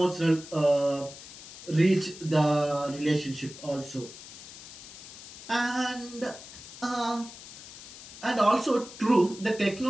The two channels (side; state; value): left; noise; hiss, 15 dB below the sound